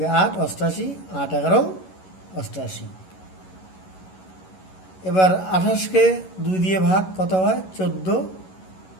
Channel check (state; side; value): late; right; 11 ms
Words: 8, 88, 8 11 88। এবার 28কে 2 দিয়ে ভাগ কত হয়? 14।